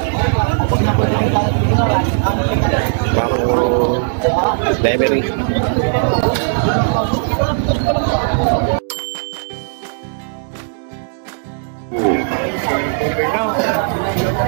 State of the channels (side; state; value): left; silent; 68 dB below the other